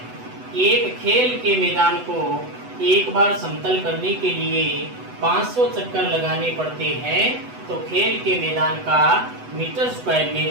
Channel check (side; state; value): left; late; 8.0 ms